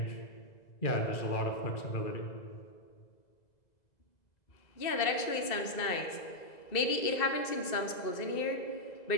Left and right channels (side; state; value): right; late; 2.0 ms